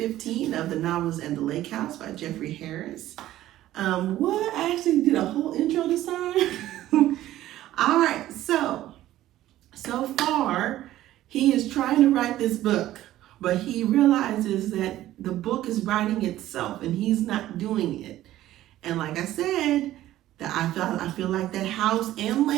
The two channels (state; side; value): quieter; left; 14.2 dB